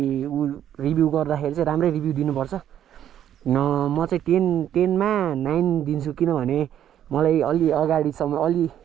रिभ्यू गर्दाखेरि चाहिँ राम्रै रिभ्यू दिनुपर्छ। म चाहिँ 10मा 9 दिन्छु। किनभने मलाई अलि अगाडिसम्म, अलि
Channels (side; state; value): left; quieter; 10.5 dB